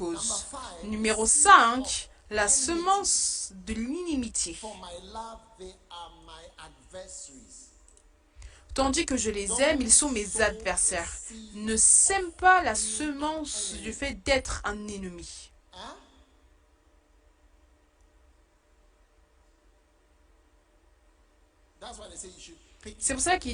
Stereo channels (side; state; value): both; identical; correlation 1.00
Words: Numéro 5, la semence de l'inimitié. Tandis que je les aime, ils sont mes adversaires. Ne sème pas la semence du fait d'être un ennemi. C'est pour ça